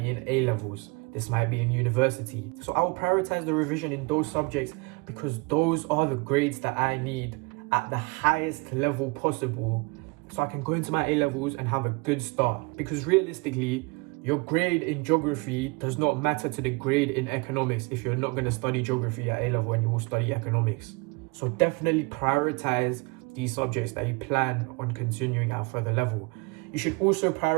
in A-levels, this might be in university. So I will prioritize the revision in those subjects because those are the grades that I need at the highest level possible, so I can go into my A-levels and have a good start. Because realistically, your grade in geography does not matter to the grade in economics if you're not going to study geography at A-level and you will study economics. So definitely prioritize these subjects that you plan on continuing at a further level. You should also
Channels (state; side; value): quieter; left; 28.3 dB